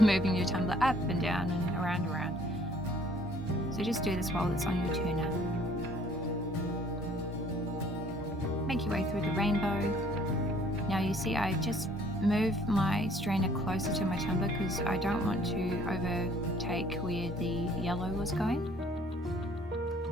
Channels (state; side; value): normal; both; correlation 0.58